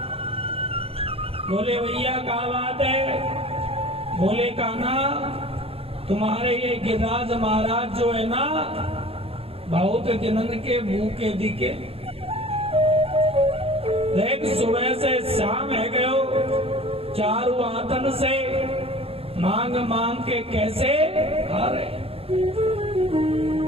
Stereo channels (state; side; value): late; left; 0.28 ms